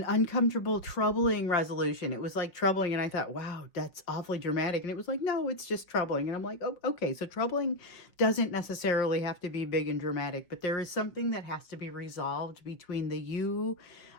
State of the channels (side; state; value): right; late; 5.5 ms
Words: uncomfortable, troubling resolution. It was like troubling, and I thought, wow, that's awfully dramatic. And it was like, no, it's just troubling. And I'm like, oh, okay, so troubling doesn't necessarily have to be big and dramatic, but there is something that has to be resolved between the you